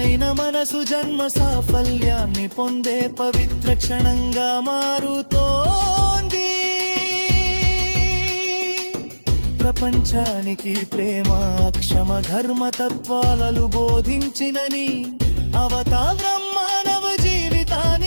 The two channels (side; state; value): both; inverted; correlation -1.00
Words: మనసు జన్మ సాఫల్యాన్ని పొందే పవిత్ర క్షణంగా మారుతోంది. ప్రపంచానికి ప్రేమ క్షమ ధర్మ తత్వాలను బోధించినని అవతారం మానవ